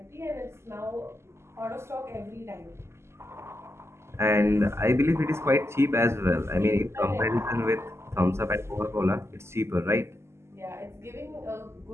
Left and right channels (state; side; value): late; left; 0.13 ms